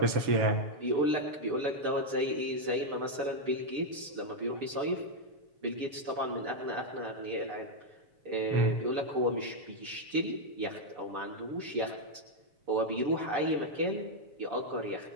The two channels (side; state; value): left; late; 6.8 ms